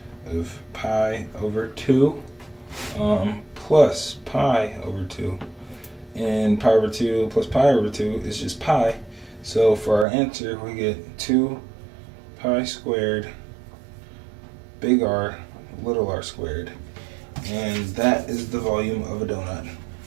of pi over 2 plus pi over 2. And pi over 2 plus pi over 2 is just pi. So for our answer, we get 2 pi squared big R little r squared. And that is the volume of a donut.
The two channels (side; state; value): left; drops out; at 10.1 s